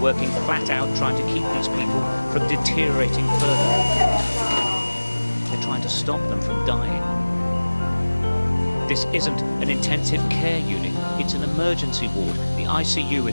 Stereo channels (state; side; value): inverted; both; correlation -1.00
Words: flat out trying to keep these people from deteriorating further. They're trying to stop them from dying. This isn't an intensive care unit, it's an emergency ward. The ICU